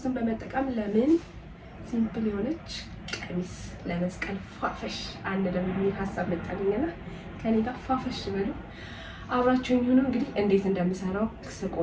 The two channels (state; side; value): identical; both; correlation 1.00